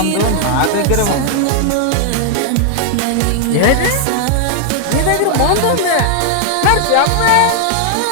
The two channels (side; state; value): both; different; correlation 0.00